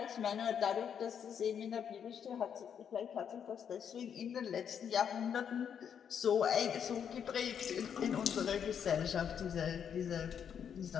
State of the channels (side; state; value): right; quieter; 8.0 dB